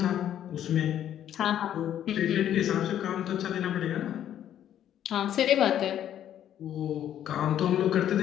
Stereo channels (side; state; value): right; quieter; 10.7 dB